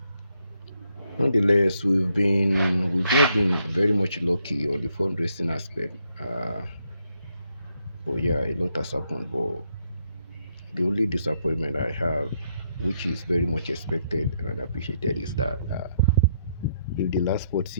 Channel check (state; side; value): inverted; both; correlation -0.75